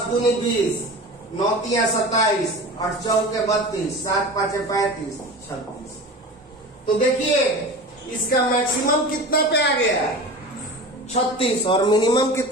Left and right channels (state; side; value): normal; both; correlation 0.33